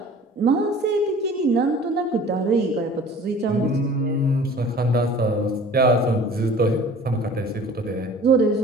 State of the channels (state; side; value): normal; both; correlation 0.46